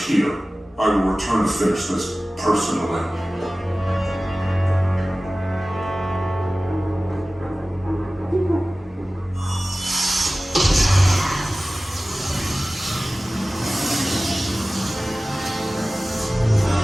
here. I will return to finish this personally.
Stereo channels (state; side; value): normal; both; correlation 0.97